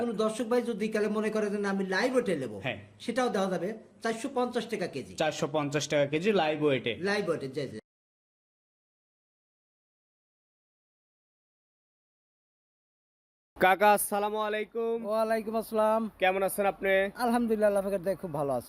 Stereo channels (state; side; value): identical; both; correlation 1.00